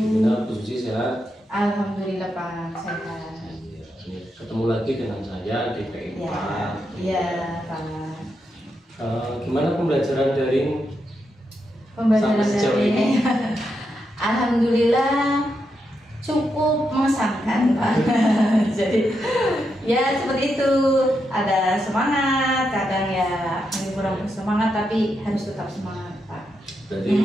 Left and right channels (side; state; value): both; normal; correlation 0.84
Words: Bu Susi, sehat? Alhamdulillah Pak, sehat. Iya, ini ketemu lagi dengan saya di PI4. Iya Pak. Gimana pembelajaran daring? Pembelajaran sampai sejauh daring ini? Alhamdulillah cukup mengesankan Pak. Jadi ya seperti itu, ada semangat, kadang ya kurang bersemangat, tapi harus tetap semangat Pak. Berarti